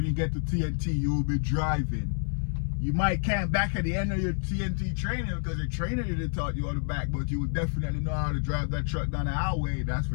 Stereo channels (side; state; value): right; silent; 59 dB below the other